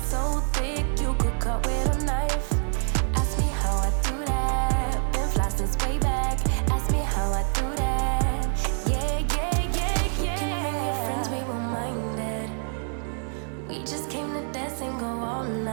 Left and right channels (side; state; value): left; silent; 60 dB below the other